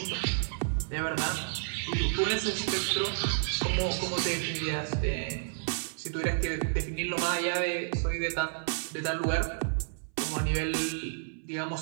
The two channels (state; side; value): silent; left; 57 dB below the other